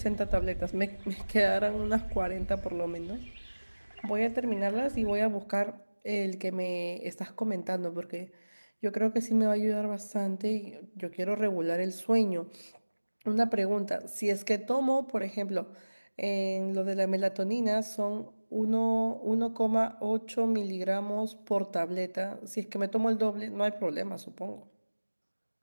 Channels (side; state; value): both; inverted; correlation -1.00